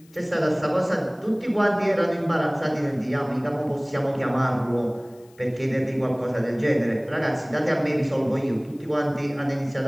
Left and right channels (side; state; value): left; noise; hiss, 30 dB below the sound